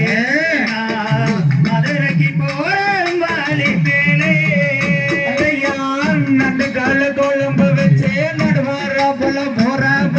குழம்பு வச்சு நடுவார போல போற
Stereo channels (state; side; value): identical; both; correlation 1.00